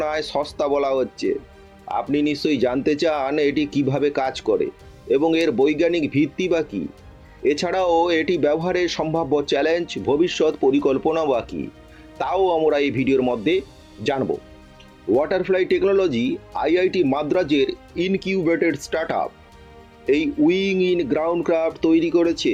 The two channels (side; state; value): both; identical; correlation 1.00